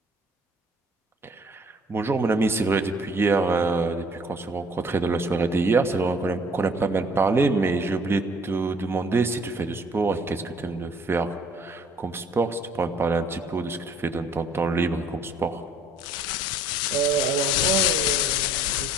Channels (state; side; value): normal; both; correlation 0.58